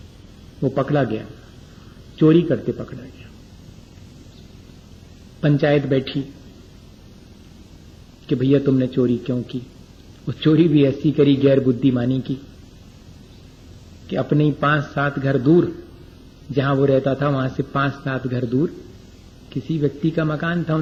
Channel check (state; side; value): identical; both; correlation 1.00